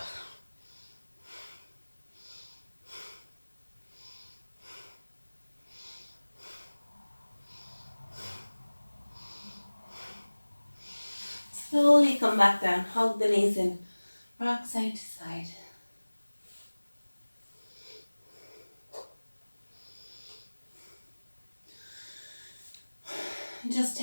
Slowly come back down, hug the knees in, rock side to side. Just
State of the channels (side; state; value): both; inverted; correlation -1.00